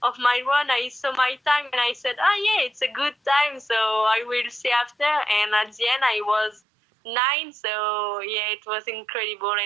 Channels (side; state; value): left; drops out; at 6.6 s